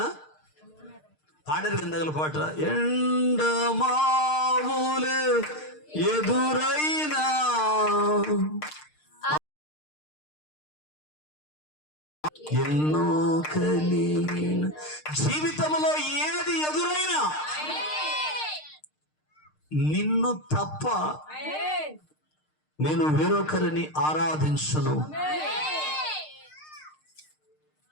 పాడరు కిందగల పాట, ఎండమావులే ఎదురైనా ఎన్నో కలిగిన, జీవితంలో ఏది ఎదురైనా నిన్ను తప్ప నేను వేరొకరిని ఆరాధించను.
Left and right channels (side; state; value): right; late; 6.6 ms